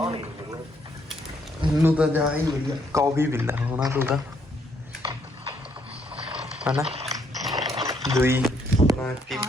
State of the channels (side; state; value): both; normal; correlation 0.71